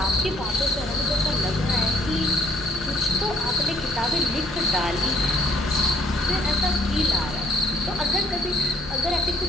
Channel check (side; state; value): both; normal; correlation 0.63